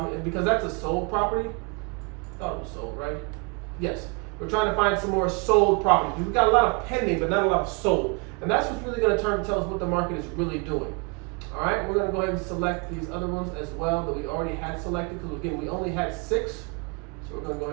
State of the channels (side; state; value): left; quieter; 31.8 dB